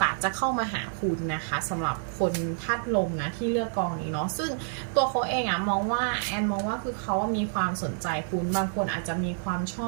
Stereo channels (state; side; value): silent; left; digital silence